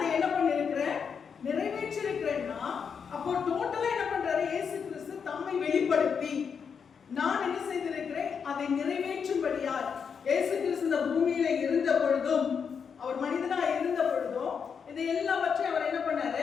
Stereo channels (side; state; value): right; quieter; 6.5 dB